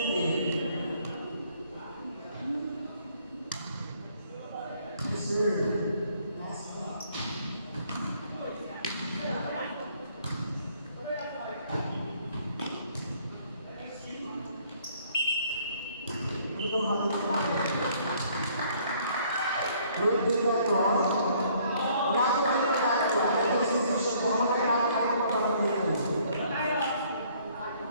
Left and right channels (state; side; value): inverted; both; correlation -0.62